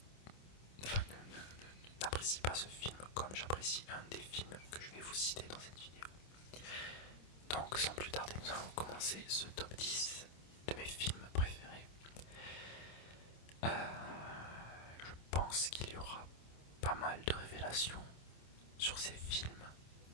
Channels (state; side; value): late; right; 26 ms